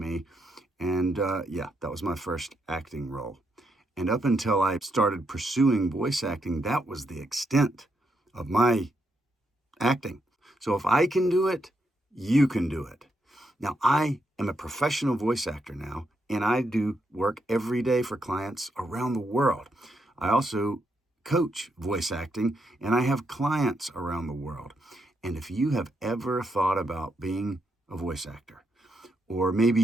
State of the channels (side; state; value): both; normal; correlation 0.80